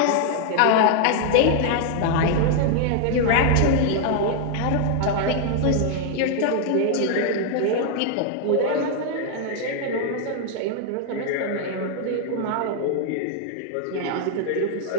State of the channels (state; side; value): different; both; correlation 0.00